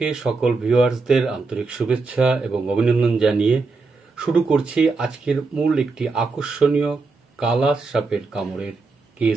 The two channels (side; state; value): left; quieter; 4.1 dB